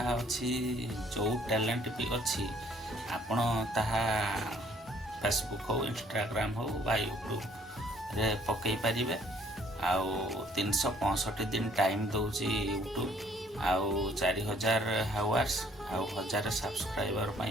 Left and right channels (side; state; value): both; normal; correlation 0.61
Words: अच्छी जो टैलेंट भी अच्छी आपण ताहा फेसबुक हो, इंस्टाग्राम हो बा यूट्यूब रे पकई पारिबे। आउ 365 दिन टाइम दौची यूट्यूब। आउ 4000 हावर्स आउ 1000 सब्सक्राइबर